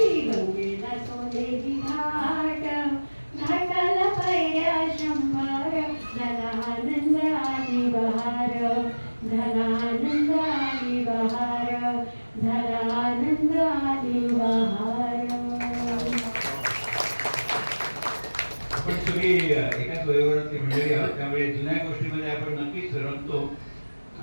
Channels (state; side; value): inverted; both; correlation -1.00